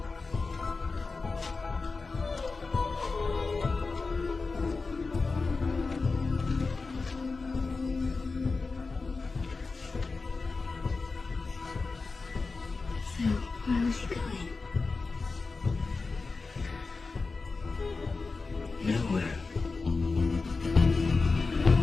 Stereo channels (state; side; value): quieter; right; 4.1 dB